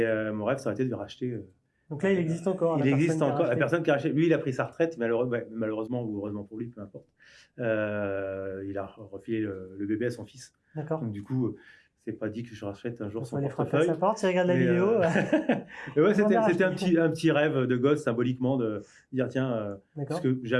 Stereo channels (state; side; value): identical; both; correlation 1.00